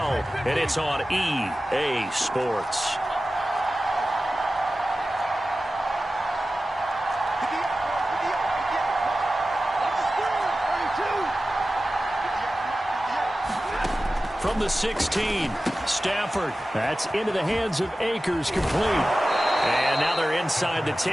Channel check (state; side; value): normal; both; correlation 0.95